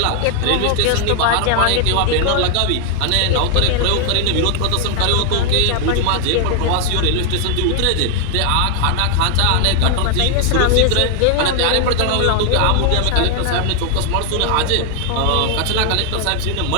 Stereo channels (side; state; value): both; different; correlation 0.00